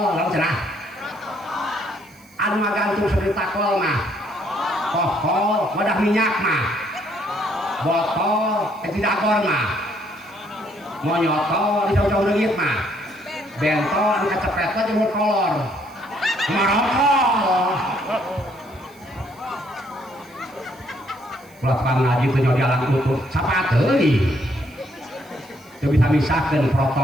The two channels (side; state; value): right; noise; hiss, 27 dB below the sound